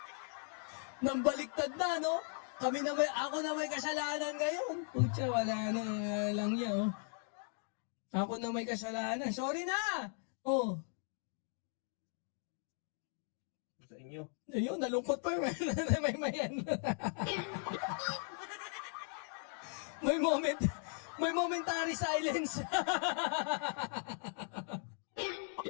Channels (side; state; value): right; silent; 52 dB below the other